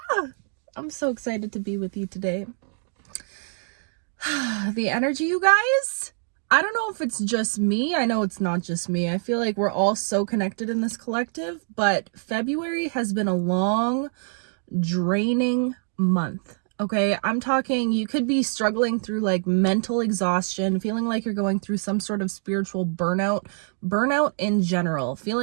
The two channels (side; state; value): left; silent; digital silence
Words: I'm so excited to be with you today. The energy, you guys. I don't know if it's just me. I know it's not just me. I feel like we're all so connected in this collective, but February has been a long, draining month. Okay, I'm talking, you could be struggling through like mental exhaustion, feeling like you're going through some sort of spiritual burnout in general,